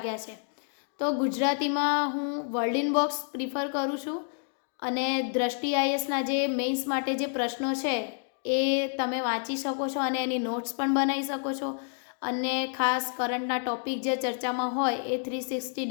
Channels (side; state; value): right; silent; 59 dB below the other